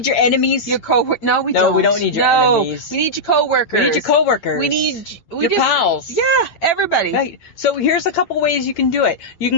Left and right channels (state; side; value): late; right; 8.8 ms